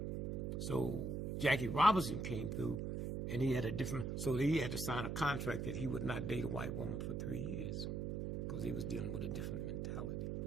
So Jackie Robinson came through, and he had a different, so he had to sign a contract that he would not date a white woman for 3 years because he was dealing with a different mentality.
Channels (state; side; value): noise; right; hum, 2 dB below the sound